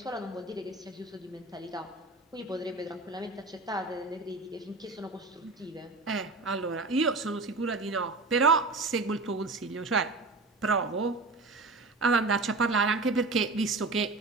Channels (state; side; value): quieter; left; 3.5 dB